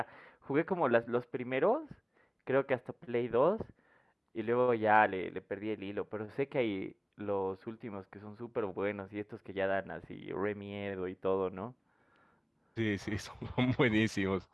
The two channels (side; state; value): both; identical; correlation 1.00